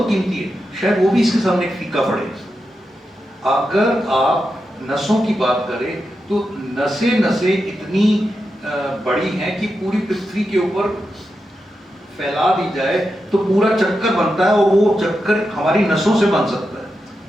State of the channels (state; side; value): normal; both; correlation 0.88